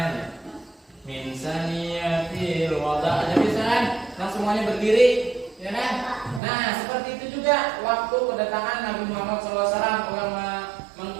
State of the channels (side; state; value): left; drops out; at 6.4 s